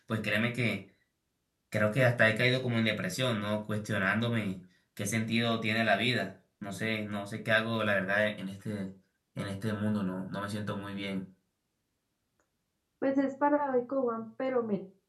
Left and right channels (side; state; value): both; identical; correlation 1.00